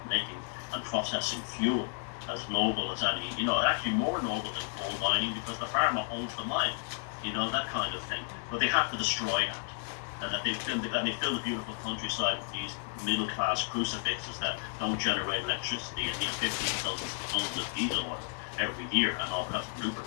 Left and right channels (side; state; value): right; silent; 56 dB below the other